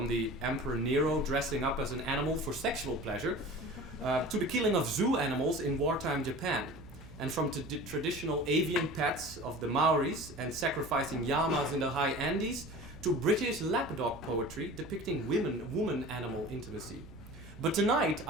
the Emperor Nero dressing up as an animal for sexual pleasure, to the killing of zoo animals in wartime Japan, and from traditional avian pets of the Maoris and sacrificing llamas in the high Andes, to British lapdog poetry depicting woman-animal intimacy. But tonight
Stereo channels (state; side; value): noise; right; hum, 18 dB below the sound